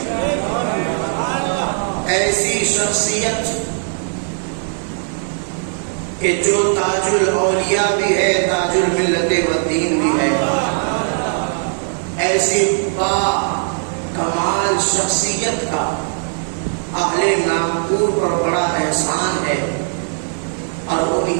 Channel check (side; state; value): left; silent; 67 dB below the other